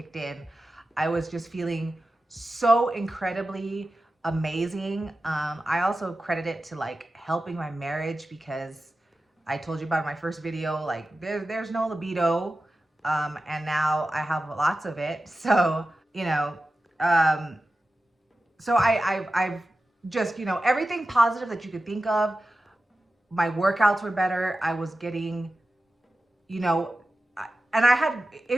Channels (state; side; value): normal; both; correlation 0.94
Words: in, I was just feeling so incredibly amazing. I also credit it to like helping my marriage, because I told you about my first video, like there's no libido. And now I have lots of it. So, you know, so I've just, you know, everything positive that you could think of. My workouts were better. I was getting, you know, and I had,